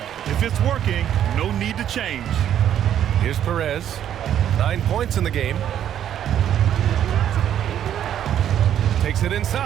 If it's working, no need to change. Here's Perez. 9 points in the game. Takes it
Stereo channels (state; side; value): quieter; left; 10.3 dB